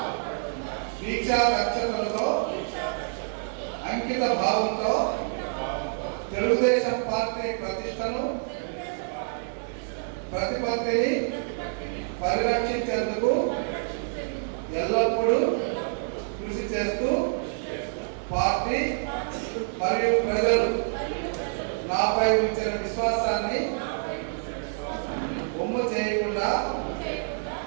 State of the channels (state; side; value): silent; left; digital silence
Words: దీక్షా రక్షకులతో అంకిత భావంతో తెలుగుదేశం పార్టీ ప్రతిష్టను ప్రతిపత్తిని పరిరక్షించేందుకు ఎల్లప్పుడూ కృషి చేస్తూ పార్టీ మరియు ప్రజలు నాపై ఉంచిన విశ్వాసాన్ని బొమ్మ చేయకుండా